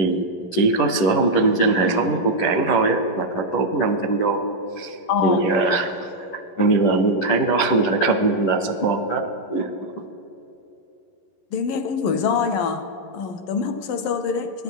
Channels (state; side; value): late; right; 11 ms